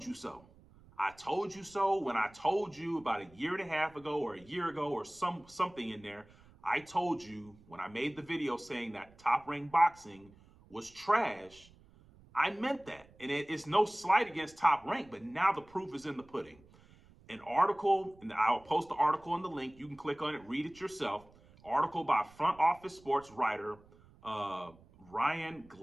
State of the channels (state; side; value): noise; right; rumble, 26 dB below the sound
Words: you so. I told you so when I told you about a year and a half ago or a year ago or something in there. I told you when I made the video saying that Top Rank Boxing was trash. I meant that. And it's no slight against Top Rank, but now the proof is in the pudding. An article, and I'll post the article in the link. You can click on it, read it yourself. Article by Front Office Sports writer Ryan